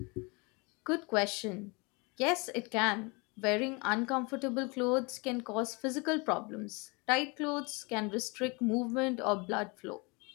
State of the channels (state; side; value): quieter; right; 28.9 dB